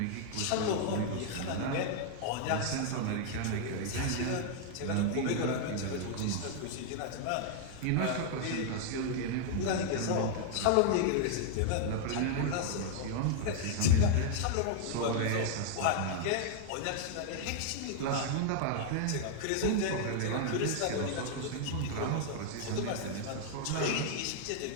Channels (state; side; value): different; both; correlation 0.00